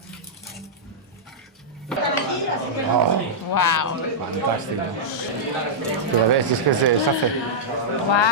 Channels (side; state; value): both; normal; correlation -0.10